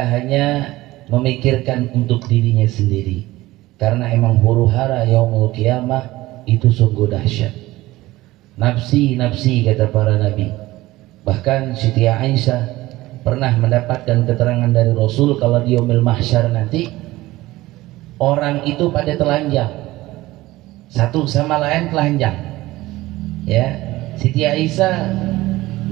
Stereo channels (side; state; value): left; quieter; 18.1 dB